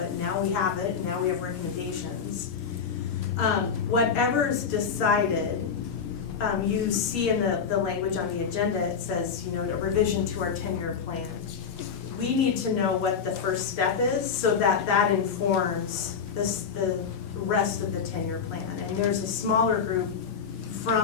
Now we have it, and now we have recommendations. Whatever's decided, you see in the language on the agenda, it says, a revision to our 10-year plan. We need to know what the first step is, so that informs the rest of the 10-year plan. And there's a smaller group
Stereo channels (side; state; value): right; quieter; 6.4 dB